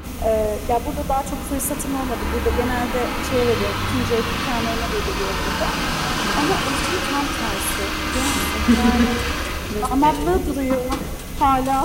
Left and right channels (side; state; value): both; identical; correlation 1.00